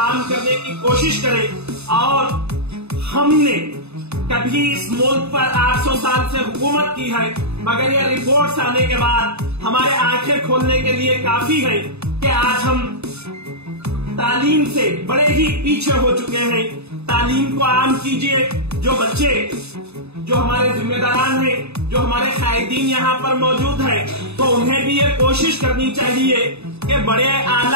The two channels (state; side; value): late; left; 0.80 ms